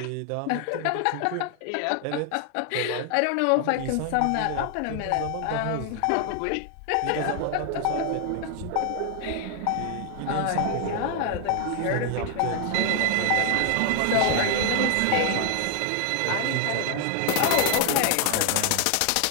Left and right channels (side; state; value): both; different; correlation 0.00